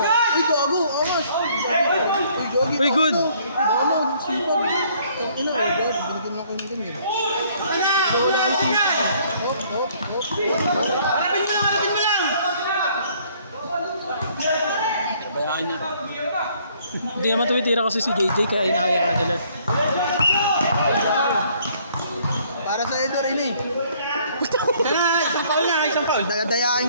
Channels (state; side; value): inverted; both; correlation -0.62